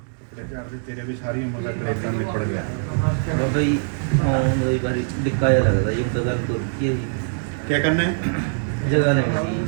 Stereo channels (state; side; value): silent; left; digital silence